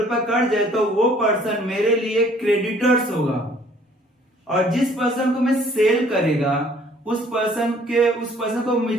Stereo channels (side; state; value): both; normal; correlation 0.58